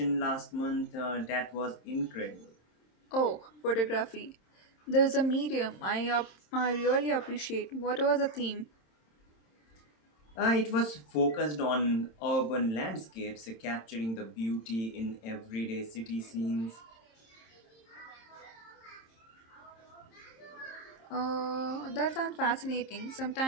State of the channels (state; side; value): late; right; 27 ms